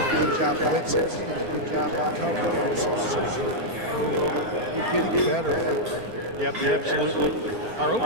a good job blitzing. He's doing a good job in coverage also. So, you know, we're getting better. Yep, absolutely. Our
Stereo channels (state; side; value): late; left; 4.4 ms